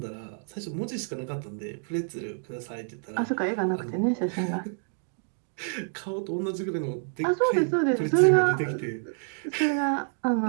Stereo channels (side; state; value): left; silent; digital silence